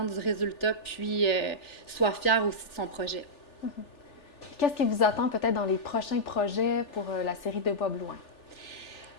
du résultat, puis soit fière aussi de son projet. Qu'est-ce qui vous attend peut-être dans les prochains projets pour la série de Bois Blouin?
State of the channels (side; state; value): right; late; 3.4 ms